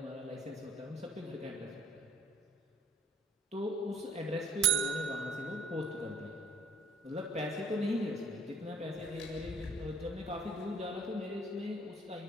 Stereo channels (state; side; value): normal; both; correlation 0.59